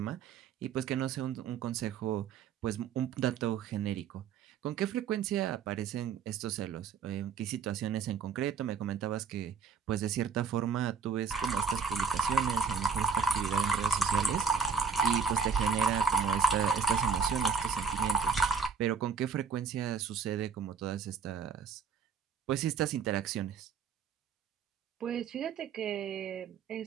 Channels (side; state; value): left; quieter; 5.9 dB